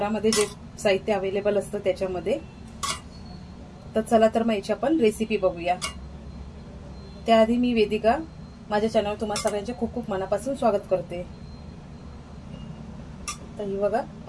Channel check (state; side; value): identical; both; correlation 1.00